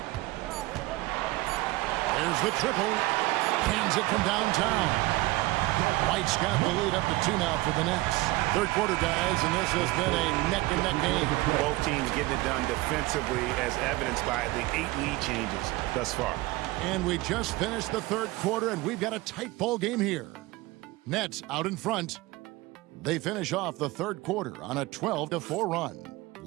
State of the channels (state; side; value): quieter; left; 20.1 dB